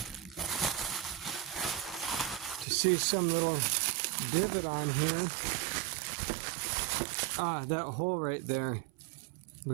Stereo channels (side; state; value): left; drops out; at 2.7 s